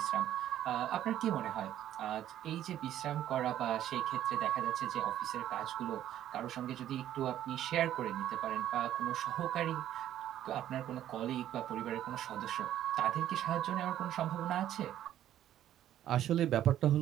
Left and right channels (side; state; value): left; quieter; 11.8 dB